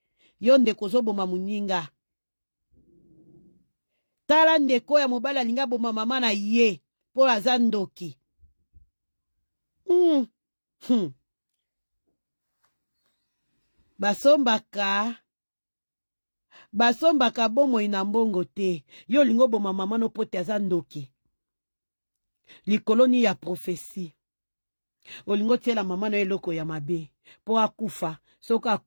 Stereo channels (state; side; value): inverted; both; correlation -1.00